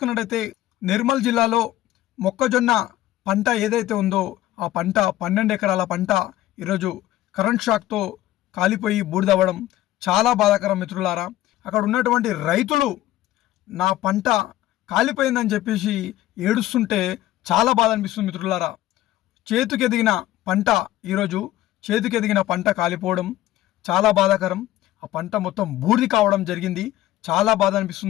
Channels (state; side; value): quieter; right; 14.7 dB